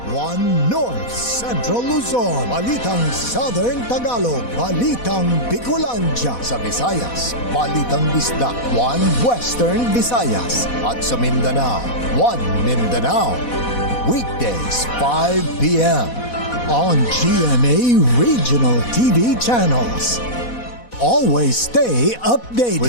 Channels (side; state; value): right; late; 4.1 ms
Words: 1 North Central Luzon, Balitang Southern Tagalog, Balitang Bicolandia sa Visayas, Balitang Bisdak, 1 Western Visayas, at sa Mindanao, 1 Mindanao. Weekdays 5 p.m. on GMA Regional TV channels. Always stay updated